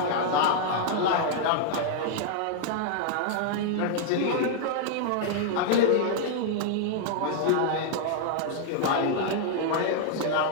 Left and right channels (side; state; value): both; different; correlation -0.01